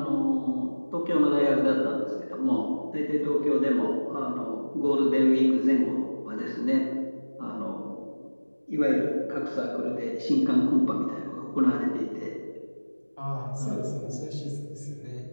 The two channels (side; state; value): both; inverted; correlation -1.00